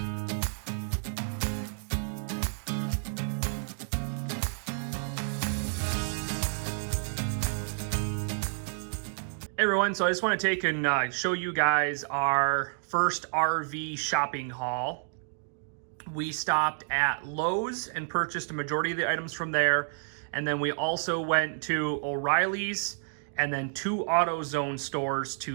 Hey everyone, so I just want to take and show you guys our first RV shopping haul. We stopped at Lowe's and purchased a majority of the items from there, and then we also went to O'Reilly's and then 2 AutoZone stores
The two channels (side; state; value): left; silent; digital silence